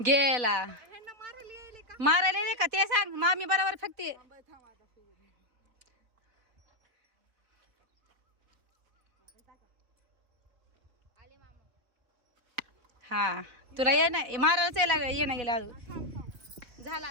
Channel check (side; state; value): left; late; 4.1 ms